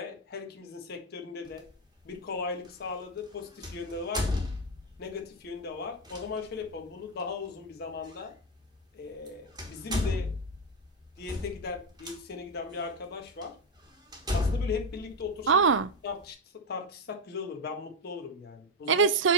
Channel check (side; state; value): both; normal; correlation 0.06